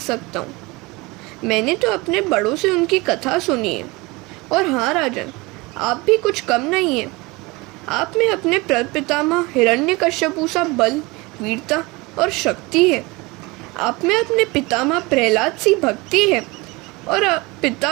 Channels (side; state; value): left; quieter; 24.1 dB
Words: सकता हूँ? मैंने तो अपने बड़ों से उनकी कथा सुनी है। और हाँ राजन, आप भी कुछ कम नहीं हैं। आप में अपने प्रपितामह हिरण्यकश्यपु सा बल, वीरता और शक्ति है। आप में अपने पितामह प्रहलाद सी भक्ति है और